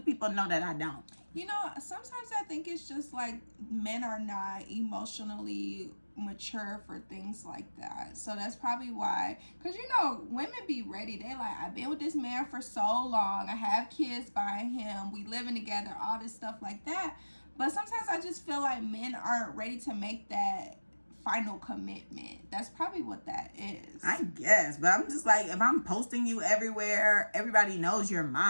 know that I don't? You know, sometimes I think it's just like men are not emotionally mature for things like that. So that's probably why. Because, you know, women be ready. They like, I've been with this man for so long. I have kids by him. We living together. All this stuff like that. But sometimes I just feel like men aren't ready to make that final commitment. That's probably what that is. I guess. But I'm just like, if I'm posting you everywhere, everybody knows you're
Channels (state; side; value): inverted; both; correlation -1.00